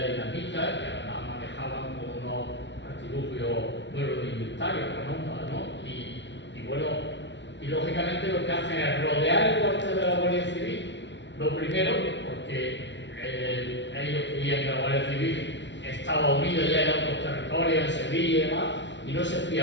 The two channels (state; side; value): late; right; 0.53 ms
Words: de dinamita, que además manejaban con unos artilugios muy rudimentarios, ¿no? Y bueno, y lógicamente lo que hacen es rodear el cuartel de la Guardia Civil, lo primero, porque ellos creían que la Guardia Civil estaba unida ya en otros territorios, en Sevilla y demás, y no se